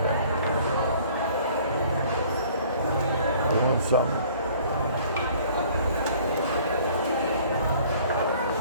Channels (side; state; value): both; inverted; correlation -0.54